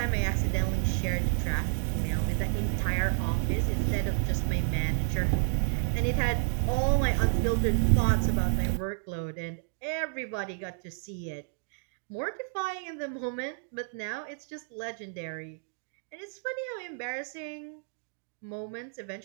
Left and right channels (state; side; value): silent; left; digital silence